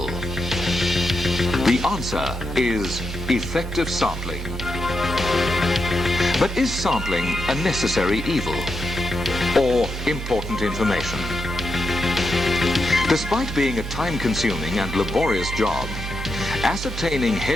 The answer is effective sampling. But is sampling a necessary evil or important information? Despite being a time-consuming and laborious job, ascertaining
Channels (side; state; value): both; normal; correlation 0.85